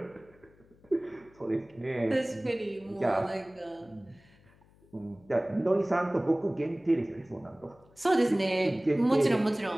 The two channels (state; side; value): noise; left; hum, 29 dB below the sound